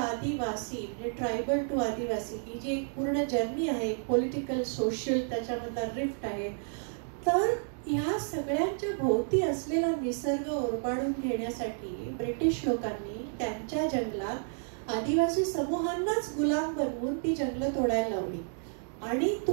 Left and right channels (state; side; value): silent; left; digital silence